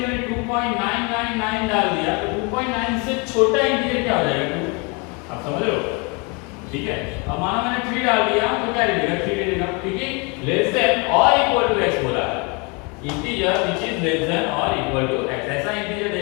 मैंने 2.999 डाल दिया तो 2.9 से छोटा इंटीजर क्या हो जाएगा? 2। आप समझ रहे हो, ठीक है। अब मानो मैंने 3 डाल दिया तो क्या देगा? 3 दे देगा, क्योंकि लेस देन और इक्वल टू x बोला है। Integer which is less than और इक्वल टू x, ऐसा इंटीजर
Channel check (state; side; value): quieter; right; 31.1 dB